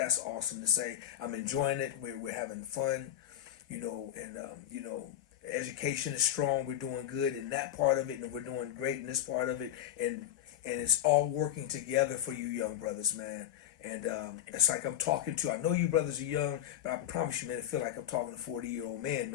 awesome to say. I'm enjoying it. We're having fun, and education is strong. We're doing good in that part of it, and we're doing great in this part of it, and it's all working together for you young brothers, man. And it's like I'm talking to, I know you brothers are young, but I promise you, man, I feel like I'm talking to a 40-year-old man,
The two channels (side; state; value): right; quieter; 11.5 dB